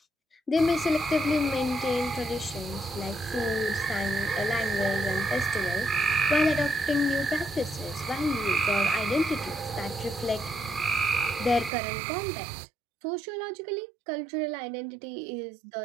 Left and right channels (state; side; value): drops out; left; at 11.7 s